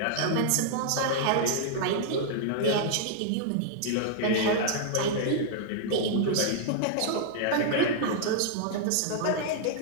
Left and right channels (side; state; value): both; different; correlation -0.01